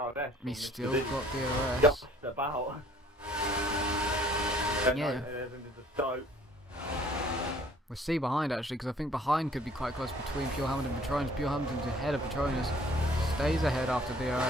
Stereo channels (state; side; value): normal; both; correlation 0.57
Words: DRS. He's still got DRS. Just about. Yeah. Stoke. We'll see behind actually, because I think behind could be quite close between Pure Hamilton and Patronus. Pure Hamilton's ahead of Patronus, stays ahead after